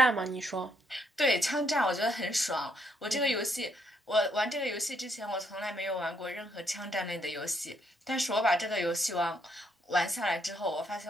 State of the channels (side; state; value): both; normal; correlation 0.73